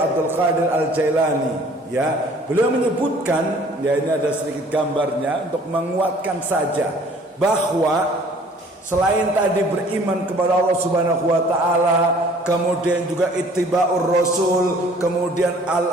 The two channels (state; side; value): normal; both; correlation 0.54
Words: Qadir Al-Jailani. Ya, beliau menyebutkan, ya ini ada sedikit gambarnya untuk menguatkan saja bahwa selain tadi beriman kepada Allah Subhanahu wa taala, kemudian juga ittiba'ur rasul, kemudian